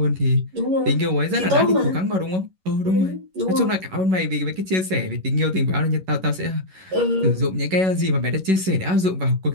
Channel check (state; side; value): late; left; 11 ms